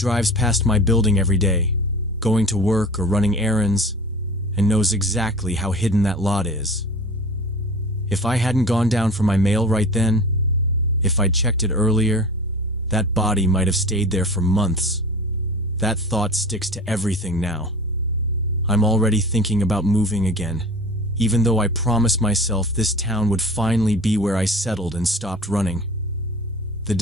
past my building every day, going to work or running errands, and knows exactly how hidden that lot is. If I hadn't gone down for my mail right then, if I'd checked it earlier, that body might have stayed there for months. That thought sticks to everything now. I'm already thinking about moving again, even though I promised myself this town would finally be where I settled and stopped running. The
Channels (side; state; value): both; normal; correlation 0.38